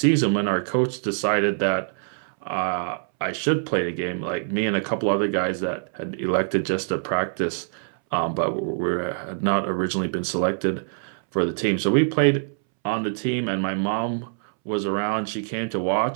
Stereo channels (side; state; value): left; silent; 62 dB below the other